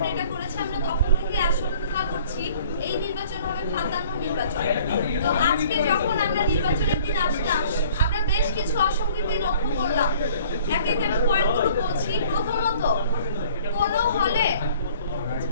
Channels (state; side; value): inverted; both; correlation -0.53